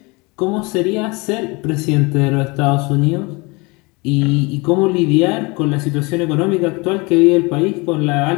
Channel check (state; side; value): quieter; right; 26.8 dB